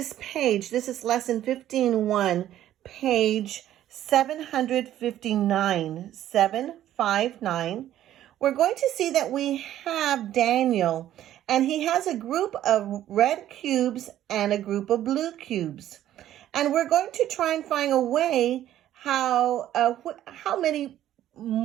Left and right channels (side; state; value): left; quieter; 12.4 dB